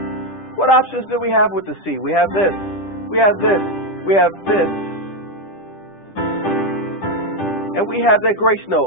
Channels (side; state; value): right; late; 10 ms